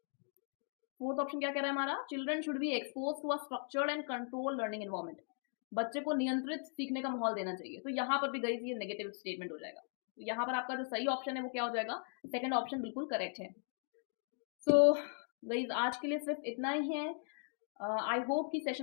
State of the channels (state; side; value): silent; right; 52 dB below the other